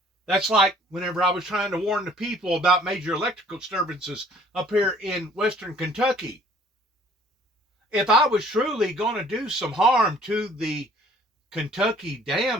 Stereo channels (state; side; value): normal; both; correlation 0.56